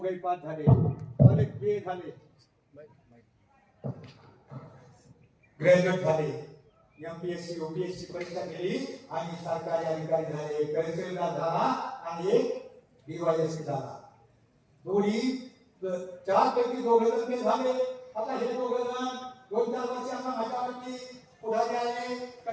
पास झाले, अनेक बी झाले, ग्रॅज्युएट झाले, एमपीएससी यूपीएससी परीक्षा दिली आणि सरकारी अधिकारी झाले. तहसीलदार झाला आणि एक डीवायएसपी झाला. दोन्ही 4 पैकी 2 जण झाले. आता हे 2 जण 2-4 वर्षांना माझ्यावरती पुढारी आले का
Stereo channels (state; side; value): identical; both; correlation 1.00